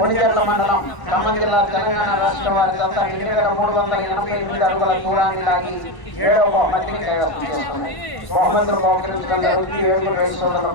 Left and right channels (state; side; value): late; right; 1.1 ms